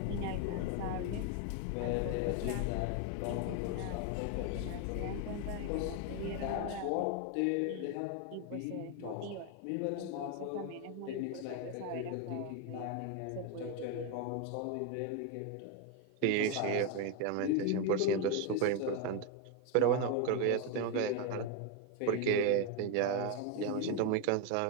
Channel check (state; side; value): different; both; correlation 0.02